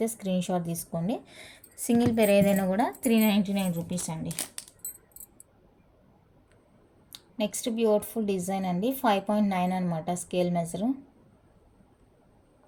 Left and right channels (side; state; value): both; identical; correlation 1.00